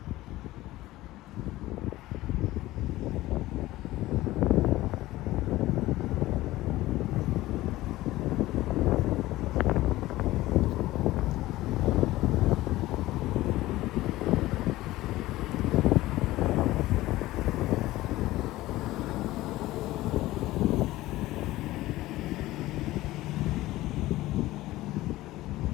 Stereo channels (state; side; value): quieter; right; 17.1 dB